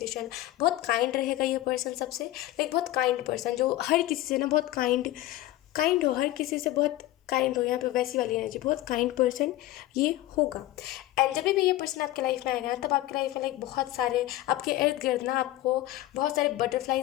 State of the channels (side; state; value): right; quieter; 15.8 dB